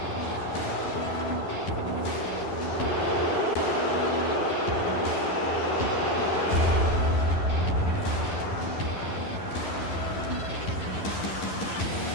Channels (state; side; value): late; right; 11 ms